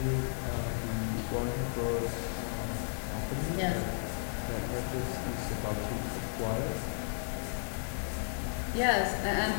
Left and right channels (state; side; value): silent; right; 55 dB below the other